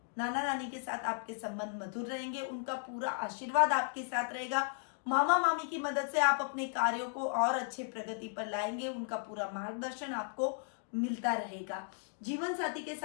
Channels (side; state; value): right; silent; digital silence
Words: नाना नानी के साथ आपके संबंध मधुर रहेंगे, उनका पूरा आशीर्वाद आपके साथ रहेगा। मामा मामी की मदद से आप अपने कार्यों को और अच्छे प्रगति पर लाएंगे, उनका पूरा मार्गदर्शन आपको मिलता रहेगा। जीवन साथी के